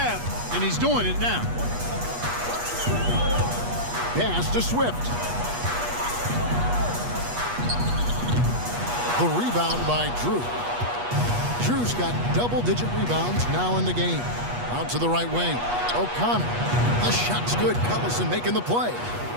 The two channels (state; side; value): late; left; 8.3 ms